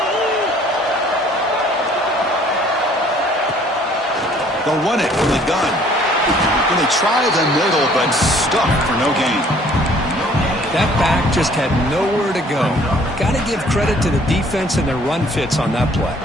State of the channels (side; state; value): both; normal; correlation 0.57